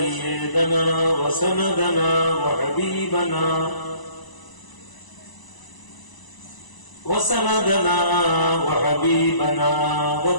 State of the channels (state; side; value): late; right; 1.0 ms